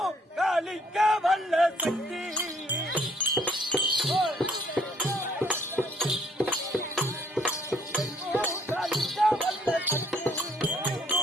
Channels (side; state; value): both; normal; correlation 0.63